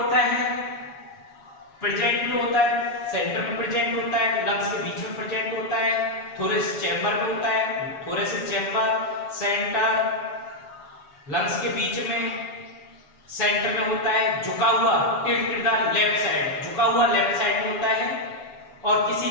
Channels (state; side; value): late; right; 7.2 ms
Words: है। प्रेजेंट जो होता है सेंटर में प्रेजेंट होता है, लंग्स के बीच में प्रेजेंट होता है, थोरेसिक चैम्बर में होता है। थोरेसिक चैम्बर, सेंटर, लंग्स के बीच में, सेंटर में होता है। झुका हुआ लेफ्ट साइड, झुका हुआ लेफ्ट साइड में होता है। और किसी